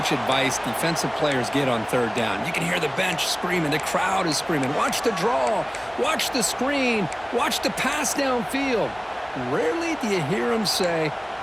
advice defensive players get on third down. You can hear the bench screaming. The crowd is screaming. Watch the draw. Watch the screen. Watch the pass downfield. Rarely do you hear them say,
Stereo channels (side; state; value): both; identical; correlation 1.00